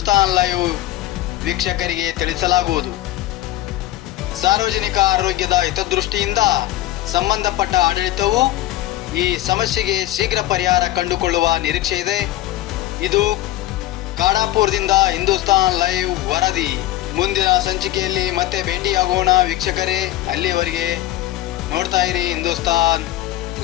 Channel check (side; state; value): right; quieter; 15.3 dB